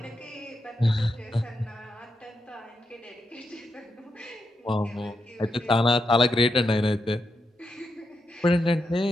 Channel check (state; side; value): normal; both; correlation 0.84